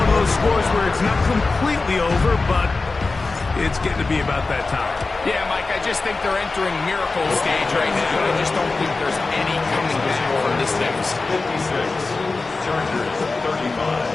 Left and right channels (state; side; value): quieter; right; 3.7 dB